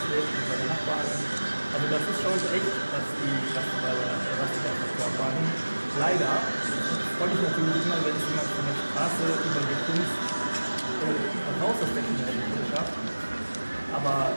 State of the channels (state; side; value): inverted; both; correlation -1.00